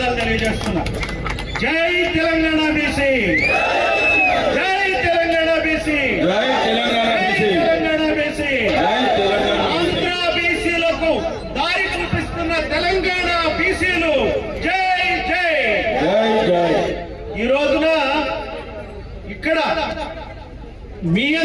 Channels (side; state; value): both; identical; correlation 1.00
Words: తెలియజేస్తున్నా. జై తెలంగాణ బీసీ, జై తెలంగాణ బీసీ, జై తెలంగాణ బీసీ, తెలంగాణ బీసీ. ఆంధ్ర బీసీలకు దారి చూపిస్తున్న తెలంగాణ బీసీలు జై జై జై జై. ఈ రోజున ఇక్కడ మీ